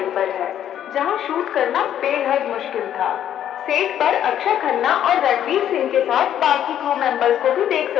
पर है, जहां शूट करना बेहद मुश्किल था। सेट पर अक्षय खन्ना और रणवीर सिंह के साथ बाकी क्रू मेंबर्स को भी देख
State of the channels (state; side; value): quieter; right; 10.5 dB